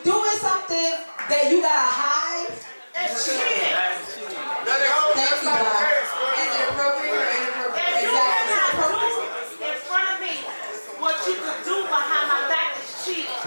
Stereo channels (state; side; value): inverted; both; correlation -1.00